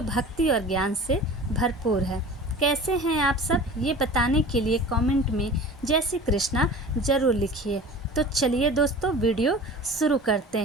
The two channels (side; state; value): both; normal; correlation 0.39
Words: भक्ति और ज्ञान से भरपूर है। कैसे हैं आप सब, ये बताने के लिए कमेंट में जय श्री कृष्णा ज़रूर लिखिए। तो चलिए दोस्तों, वीडियो शुरू करते